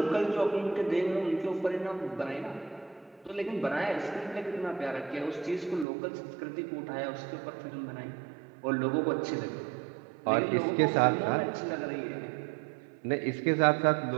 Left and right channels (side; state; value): left; drops out; at 5.9 s